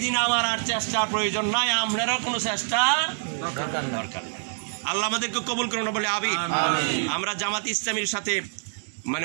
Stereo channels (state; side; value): silent; left; digital silence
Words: দিন আমার আর চেষ্টার প্রয়োজন নাই, আপনারও কোনো চেষ্টা দরকার নাই। আল্লাহ আমাদেরকে কবুল করুন বলে আমিন। আমরা জামাত ইসলামীর সাথে